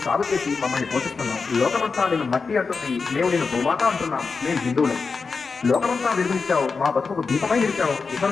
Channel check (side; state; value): right; quieter; 4.8 dB